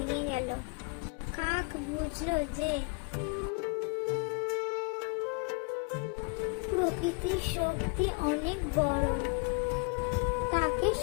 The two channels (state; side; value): quieter; right; 31.8 dB